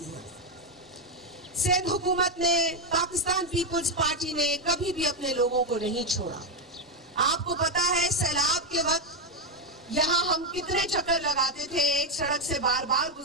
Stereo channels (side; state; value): both; normal; correlation 0.05